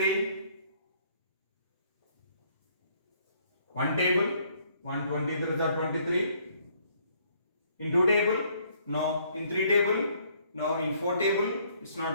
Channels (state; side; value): inverted; both; correlation -0.65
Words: One table, 123 is 23. In 2 table? No. In 3 table? No. In 4 table? It's